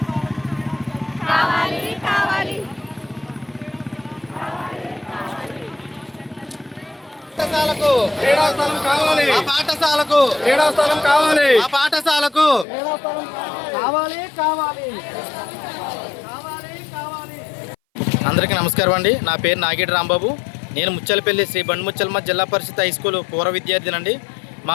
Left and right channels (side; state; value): right; drops out; at 12.7 s